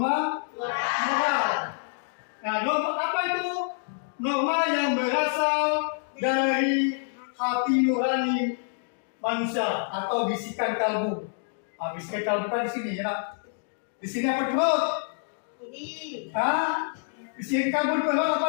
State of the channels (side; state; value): right; silent; digital silence